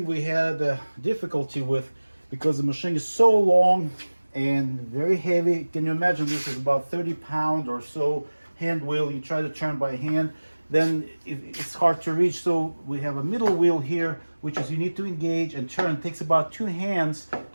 we had difficulty with, because the machine is so long and very heavy. Can you imagine, this is about 30 pound or so hand wheel. You try to turn by hand, then it's hard to reach. So we have a middle wheel here, which is you need to engage and turn. It takes about 2 hands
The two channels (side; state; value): both; inverted; correlation -1.00